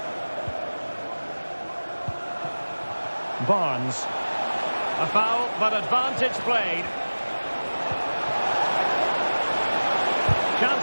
Barnes. A foul, but advantage played.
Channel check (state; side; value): inverted; both; correlation -1.00